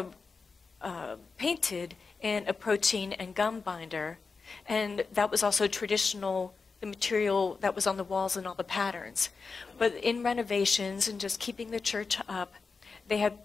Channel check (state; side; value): quieter; right; 4.7 dB